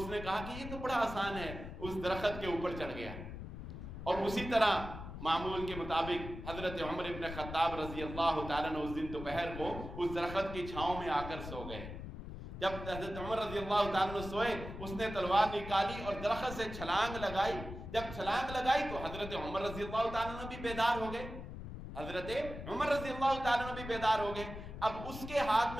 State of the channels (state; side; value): noise; left; rumble, 9 dB below the sound